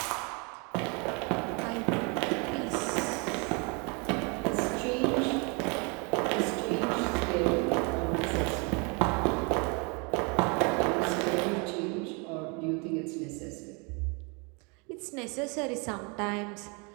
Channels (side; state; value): left; quieter; 32.3 dB